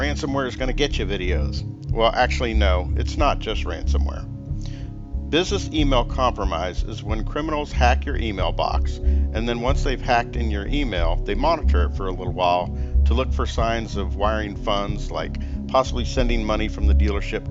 is going to get you videos. Well, actually no, it's not just ransomware. Business email compromise is when criminals hack your email box, and then once they've hacked in your email, they monitor it for a little while to look for signs of wiring funds, like possibly sending money from the dealership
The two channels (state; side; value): identical; both; correlation 1.00